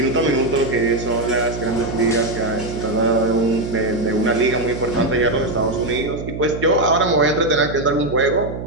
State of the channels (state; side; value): noise; right; hum, 8 dB below the sound